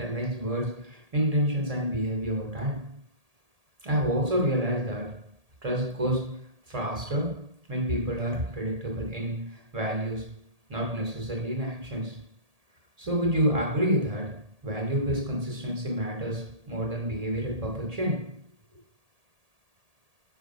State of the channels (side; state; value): left; late; 1.8 ms